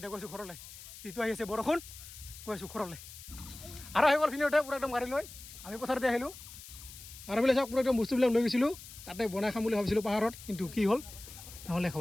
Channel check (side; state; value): left; noise; hiss, 15 dB below the sound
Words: গৈছোঁ ঘৰলৈ যিটো আহি আছে বৰষুণ গৈছোঁ ঘৰলৈ আৰু আহি গ'ল ফিনিতে পূৰা একদম গাড়ী লৈ আমি পথাৰতে আহিলোঁ আৰু বোলে চাওক পূৰা একদম বস্তুবিলাক লৈ গৈছিলোঁ তাতে বনাই খাম বুলি ভাবিছিলোঁ পাহাৰত কিন্তু কি হ'ল নহ'লে